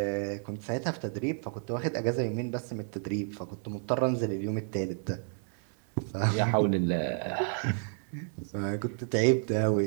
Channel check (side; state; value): left; silent; 57 dB below the other